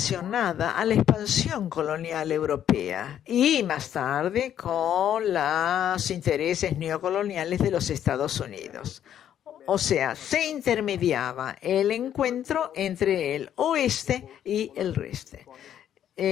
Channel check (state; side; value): quieter; right; 10.2 dB